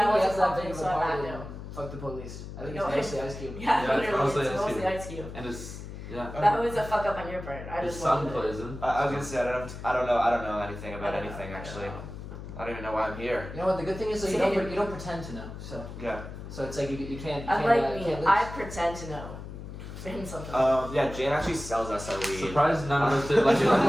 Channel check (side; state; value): left; noise; hum, 10 dB below the sound